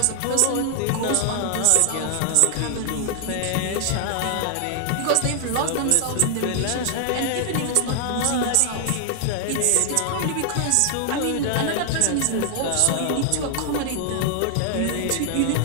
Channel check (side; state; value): both; different; correlation 0.00